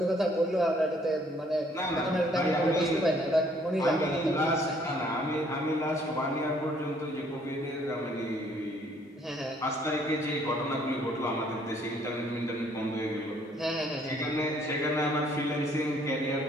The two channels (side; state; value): both; normal; correlation 0.63